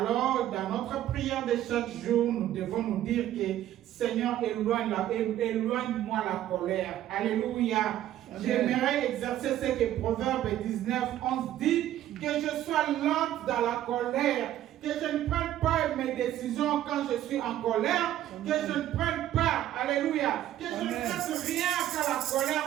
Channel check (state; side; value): quieter; left; 12.6 dB